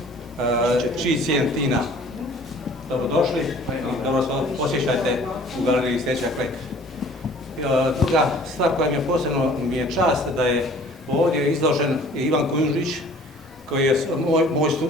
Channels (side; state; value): both; normal; correlation 0.51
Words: Tina. Dobrodošli i dobro posjećajte u galeriji Steča Kleku. Druga stvar koja mi je posebno čast da je ovdje izložen Ivan Kujundžić, koji je